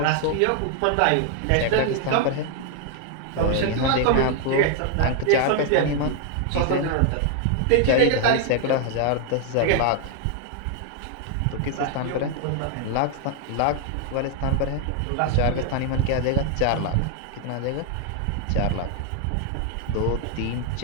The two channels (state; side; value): different; both; correlation 0.00